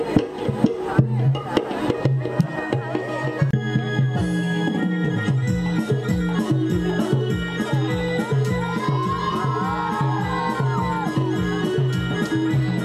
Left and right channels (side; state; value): both; identical; correlation 1.00